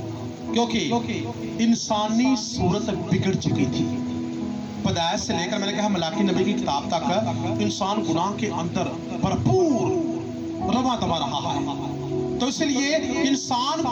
क्योंकि इंसानी सूरत बिगड़ चुकी थी। पैदाइश से लेकर मैंने कहा मलाकी नबी की किताब तक इंसान गुनाह के अंदर भरपूर रवा दबा रहा है। तो इसलिए इंसान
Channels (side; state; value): both; identical; correlation 1.00